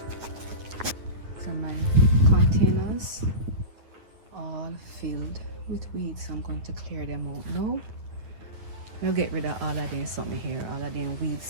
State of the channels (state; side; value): late; left; 9.8 ms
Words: So my containers all filled with weeds. I'm going to clear them out now. I'll get rid of all of them something here, all of them